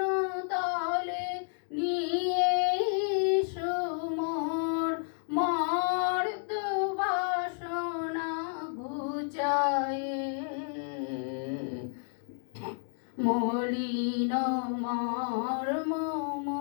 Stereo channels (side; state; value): right; silent; 57 dB below the other